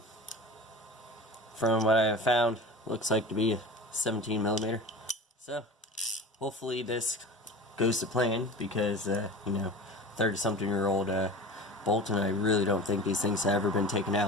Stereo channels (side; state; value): both; normal; correlation 0.35